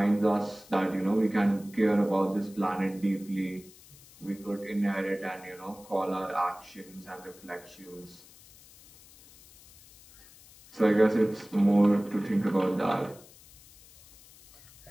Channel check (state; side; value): noise; left; hiss, 23 dB below the sound